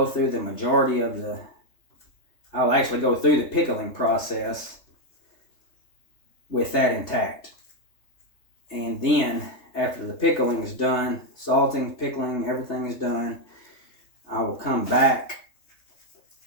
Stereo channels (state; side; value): late; right; 3.3 ms